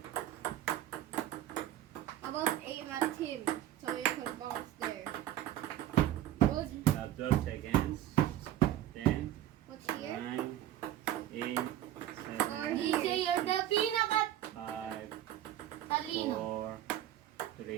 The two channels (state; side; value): quieter; left; 12.6 dB